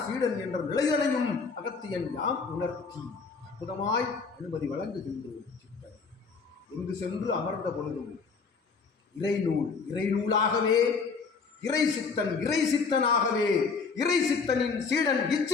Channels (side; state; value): right; quieter; 4.9 dB